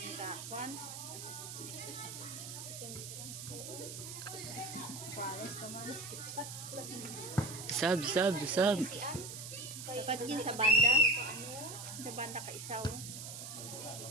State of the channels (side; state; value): right; noise; hiss, 9 dB below the sound